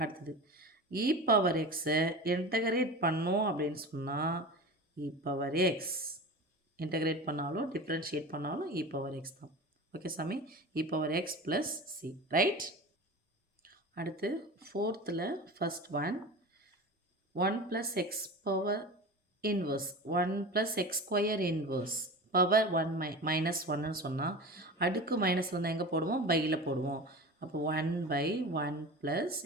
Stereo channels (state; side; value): normal; both; correlation 0.31